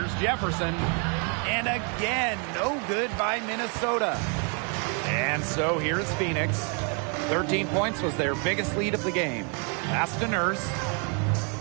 Jefferson. And again, no good by Minnesota. And so here's Phoenix. 13 points was their biggest lead of the game. Pass to Nurse.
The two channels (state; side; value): quieter; left; 37.3 dB